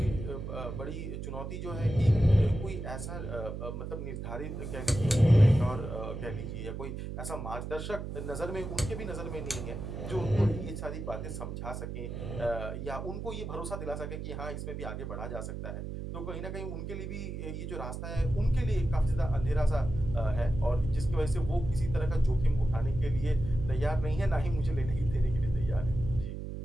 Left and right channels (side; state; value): right; noise; hum, 6 dB below the sound